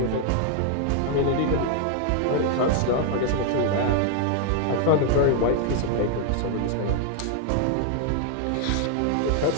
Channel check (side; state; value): both; different; correlation 0.00